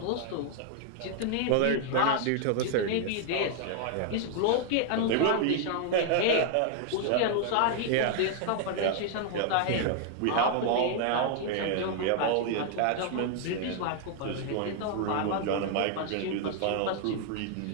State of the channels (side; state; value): both; different; correlation 0.00